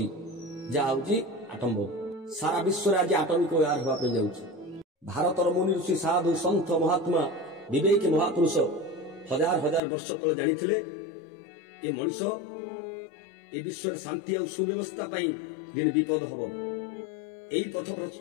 आटम बम सारा विश्व आज आटमिक व्यवहार होगा जाऊँगी भारतर मुनि ऋषि साधु सन्थ महात्मा विवेकी महापुरुष हजार हजार वर्ष तले जानी ये मनीष ये विश्व शांति और सुव्यवस्था दिन विपद हम यही पथ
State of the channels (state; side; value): drops out; right; at 9.8 s